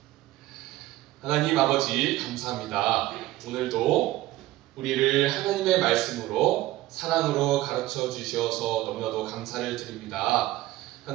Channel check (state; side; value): quieter; left; 16.7 dB